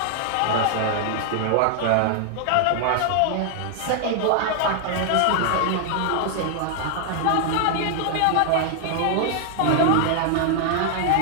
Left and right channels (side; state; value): both; different; correlation 0.00